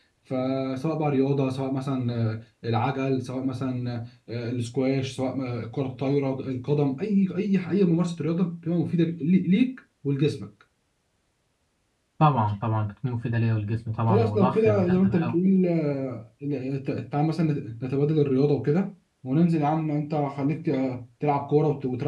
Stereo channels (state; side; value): identical; both; correlation 1.00